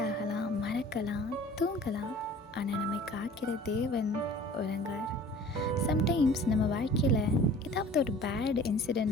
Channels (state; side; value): normal; both; correlation 0.46